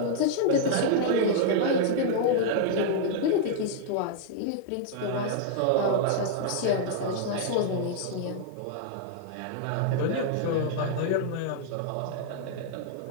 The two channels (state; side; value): different; both; correlation -0.01